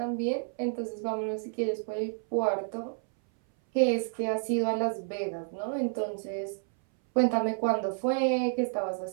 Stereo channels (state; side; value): silent; left; 58 dB below the other